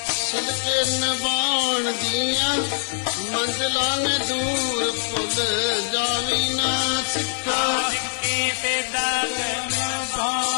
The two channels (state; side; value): silent; right; 63 dB below the other